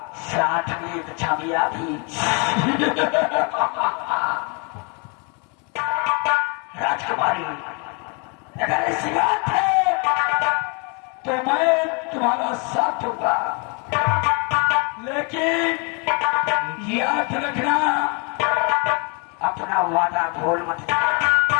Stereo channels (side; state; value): right; quieter; 34.5 dB